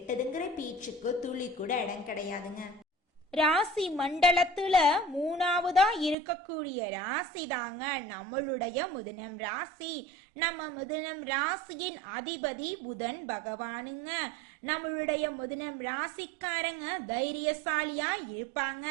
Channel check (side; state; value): left; drops out; at 6.2 s